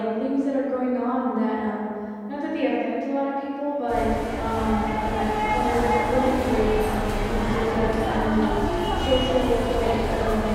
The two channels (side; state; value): both; identical; correlation 1.00